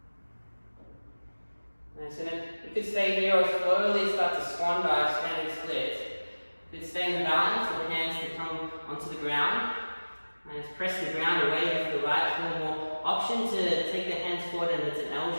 Nice, and then you could stay here or slowly start to swan dive, standing split. You could stay in the balance with the hands to come onto the ground. And just press the ground away with the right heel more. Option to take the hands forward and it's an L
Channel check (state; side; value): inverted; both; correlation -1.00